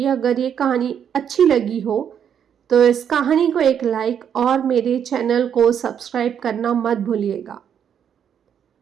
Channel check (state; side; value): quieter; left; 8.5 dB